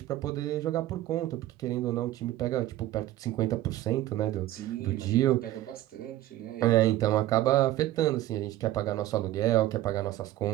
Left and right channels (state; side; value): quieter; left; 14.7 dB